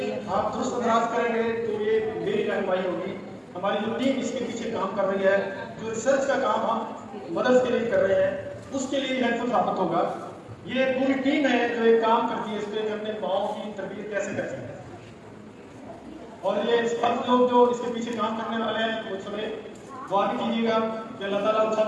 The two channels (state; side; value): identical; both; correlation 1.00